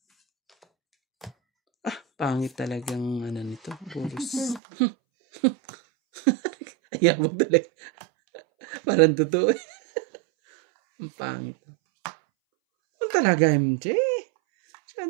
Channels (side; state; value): left; drops out; at 4.6 s